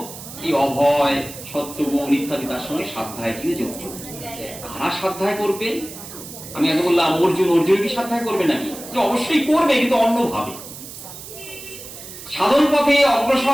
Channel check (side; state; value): right; noise; hiss, 13 dB below the sound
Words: এই অভয়, সত্যগুণ ইত্যাদি তার সঙ্গে সাধ্যায় দিয়ে যুক্ত। কারা সাধ্যায় করবে? আমি আগে বললাম অর্জুন কি সাধ্যায় করবে নাকি? অবশ্যই করবে, কিন্তু অন্যভাবে। সাধন পথে